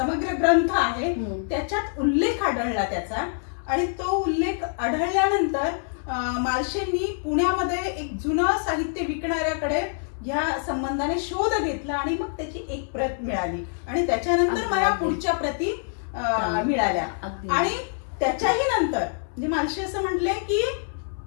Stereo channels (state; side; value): silent; right; digital silence